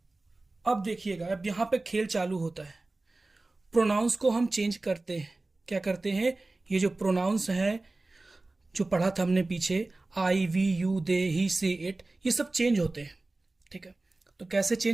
अब देखिएगा, अब यहां पे खेल चालू होता है। प्रोनाउंस को हम चेंज करते हैं। क्या करते हैं? ये जो प्रोनाउंस है जो पढ़ा था हमने पीछे, आई, वी, यू, दे, ही, से, इट, ये सब चेंज होते हैं, ठीक है। तो कैसे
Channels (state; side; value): quieter; left; 3.1 dB